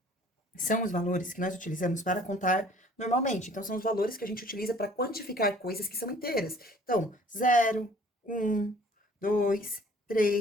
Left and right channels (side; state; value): both; normal; correlation 0.54